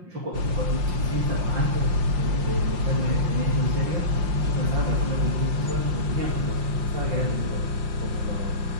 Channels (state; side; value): late; left; 5.7 ms